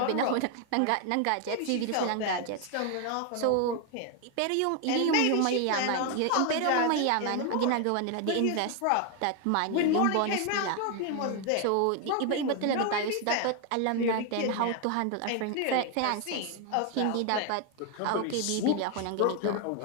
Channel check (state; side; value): different; both; correlation 0.01